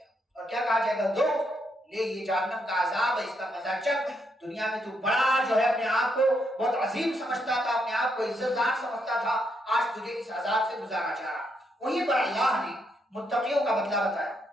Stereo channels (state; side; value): normal; both; correlation 0.78